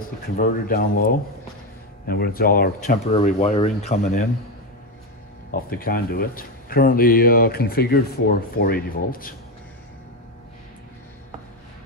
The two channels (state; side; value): normal; both; correlation 0.12